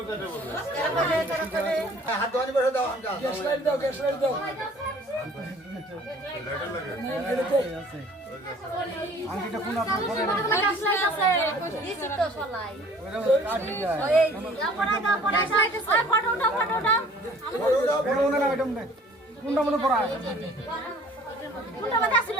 কাজে বলবে হাত ধোয়ানি বসে দাও আমটা গ্যাস লাইট দাও লেটার লাগে আংটিটা কোন আপনার পরে না আছে দিছি তো সলাই ওইটা কাটি যায় ওই পড়া দাও ওই ফটো উঠাও বড় না ওইটা মনে কোনটা মনে পড়া কোনটা মধ্যে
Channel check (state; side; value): normal; both; correlation 0.52